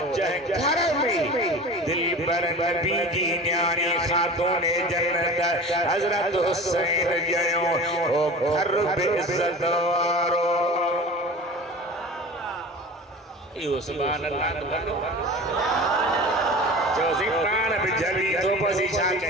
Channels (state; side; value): normal; both; correlation 0.36